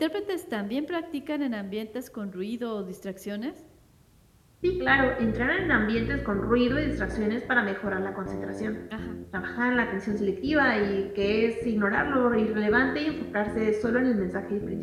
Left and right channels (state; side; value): identical; both; correlation 1.00